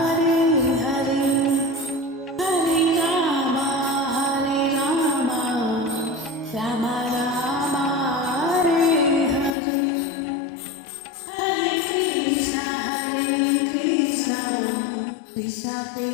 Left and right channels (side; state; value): right; drops out; at 9.6 s